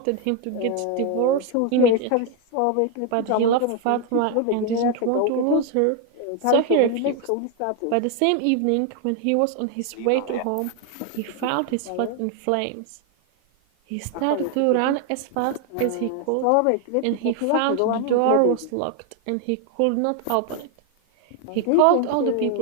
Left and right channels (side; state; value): both; different; correlation 0.01